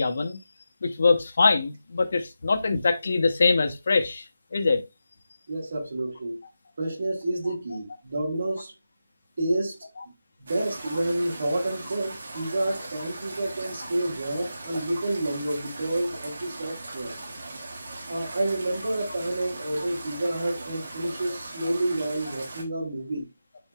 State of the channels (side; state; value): both; inverted; correlation -0.90